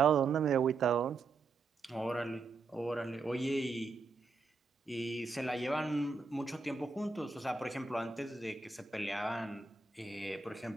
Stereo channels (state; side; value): quieter; left; 4.2 dB